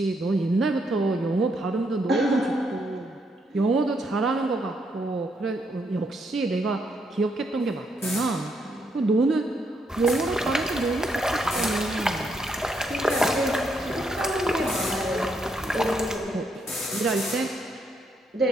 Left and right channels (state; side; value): normal; both; correlation 0.76